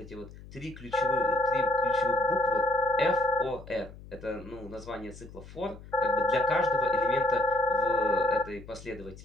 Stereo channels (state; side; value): noise; left; hum, 17 dB below the sound